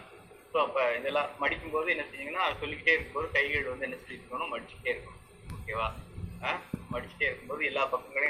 ஸோ அப்போ இதெல்லாம் மடிக்கும்போது என்ன செஞ்சீங்கன்னா சொல்லிக்கிட்டே இருக்கும்போது கைகள் வந்து என்ன சொல்லியிருக்கணும், மடிச்சுட்டே இருக்கணும். ஓகேவா, மடிச்சுட்டே இருக்கும்போது எல்லா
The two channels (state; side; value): identical; both; correlation 1.00